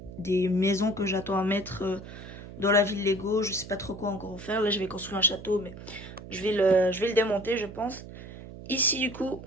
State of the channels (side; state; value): right; noise; hum, 14 dB below the sound